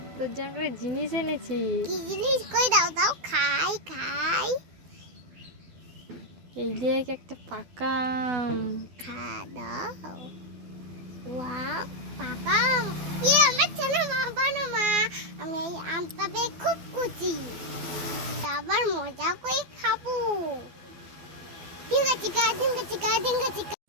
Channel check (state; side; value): late; left; 12 ms